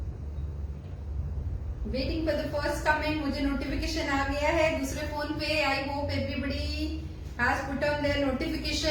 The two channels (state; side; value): identical; both; correlation 1.00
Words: Waiting for the first comment. मुझे notification आ गया है दूसरे phone पे. I hope everybody has put on their